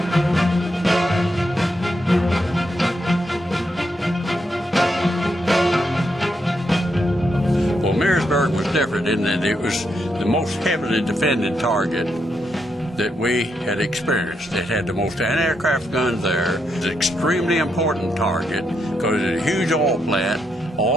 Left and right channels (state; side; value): normal; both; correlation 0.80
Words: In that it was the most heavily defended target that we had experienced. It had the most anti-aircraft guns there. It was an extremely important target because it was a huge oil plant.